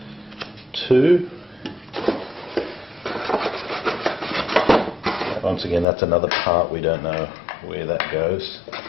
2. Once again, that's another part, we don't know where that goes.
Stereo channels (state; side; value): drops out; right; at 5.9 s